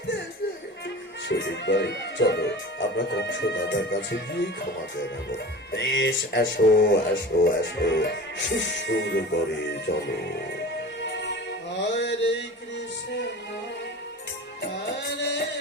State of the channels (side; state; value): both; normal; correlation 0.37